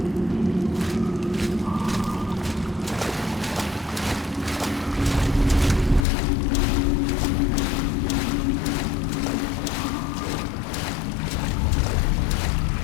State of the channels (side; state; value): right; drops out; at 6.1 s